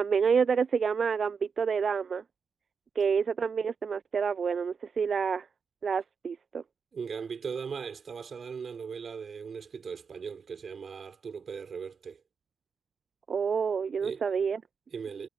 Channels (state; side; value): quieter; left; 5.8 dB